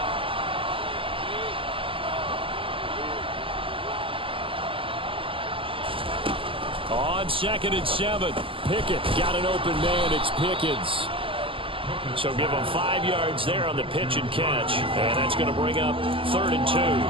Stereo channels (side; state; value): left; late; 0.25 ms